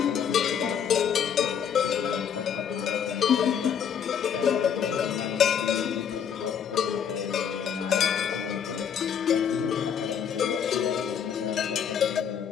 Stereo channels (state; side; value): quieter; right; 8.0 dB